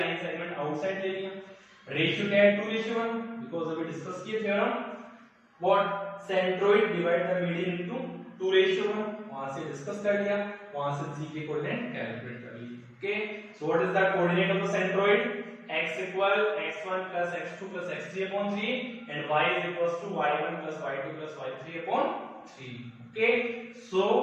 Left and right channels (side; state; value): both; identical; correlation 1.00